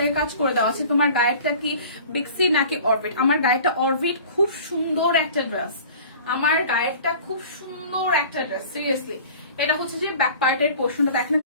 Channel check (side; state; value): both; inverted; correlation -0.44